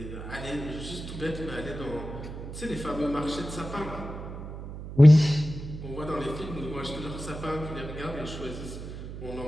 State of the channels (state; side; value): noise; right; hum, 10 dB below the sound